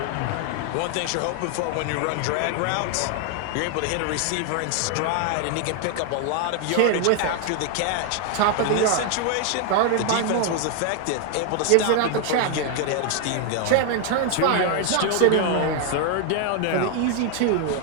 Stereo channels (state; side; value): different; both; correlation 0.00